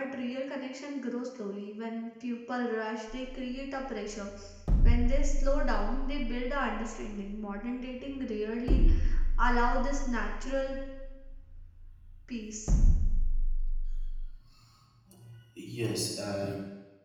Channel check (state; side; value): identical; both; correlation 1.00